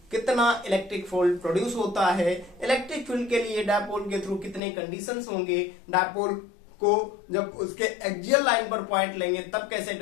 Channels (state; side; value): drops out; right; at 4.6 s